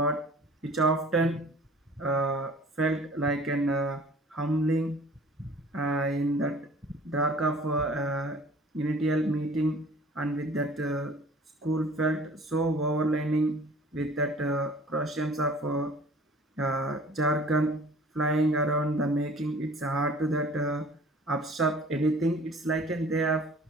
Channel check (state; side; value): normal; both; correlation 0.49